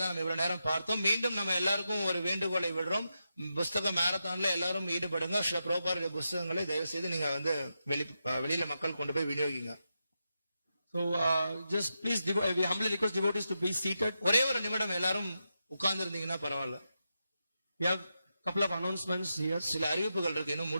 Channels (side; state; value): both; inverted; correlation -0.87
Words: நம்ம இவ்வளவு நேரம் பார்த்தோம். மீண்டும் நம்ம எல்லாருக்கும் ஒரு வேண்டுகோளை விடுறோம். புஸ்தக மேரத்தான்ல எல்லாரும் ஈடுபடுங்க. ஸ்ரீ பிரபுபாதருடைய புஸ்தகங்களை தயவு செய்து நீங்க வெளியில மக்கள் கொண்டு போய் விநியோகிங்க. So just please we humbly request devotees to be seated. ஒரே ஒரு நிமிடம் எல்லாரும் உட்கார்ந்து இருந்தீங்கன்னா பரவாயில்ல. We have couple of announcements here. சில அறிவிப்புகள் இருக்கு, இன்னும்